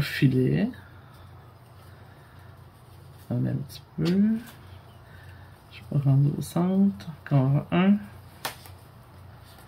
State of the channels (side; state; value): both; identical; correlation 1.00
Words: filet. On a un petit peu. Je vais rendre au centre. Encore